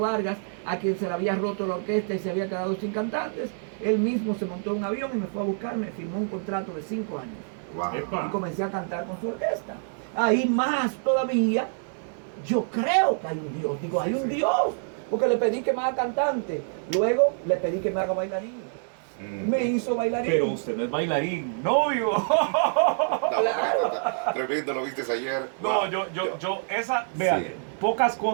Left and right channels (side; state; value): left; silent; digital silence